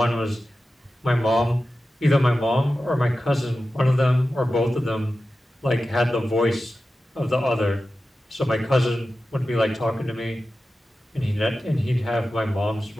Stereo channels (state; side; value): normal; both; correlation 0.93